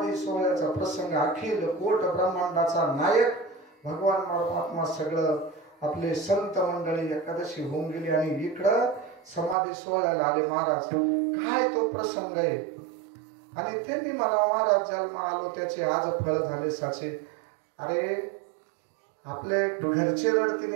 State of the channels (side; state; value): left; drops out; at 9.6 s